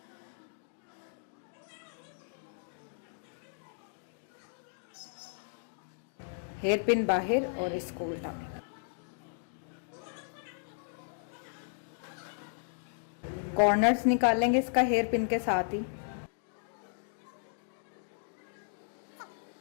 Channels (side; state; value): right; silent; digital silence